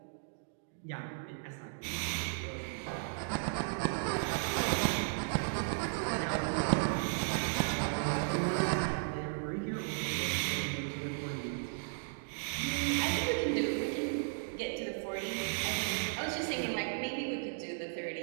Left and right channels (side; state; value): left; silent; digital silence